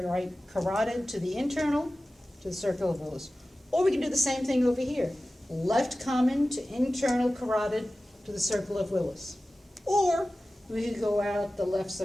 carotid to the internal, to the circle of Willis. Or we can do the same thing over here. Left common to internal carotid to the circle of Willis. Or we could go out the left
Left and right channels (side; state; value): both; normal; correlation 0.96